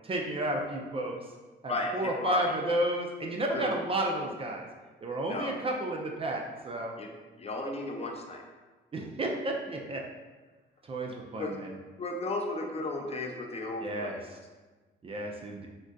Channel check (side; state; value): both; normal; correlation 0.31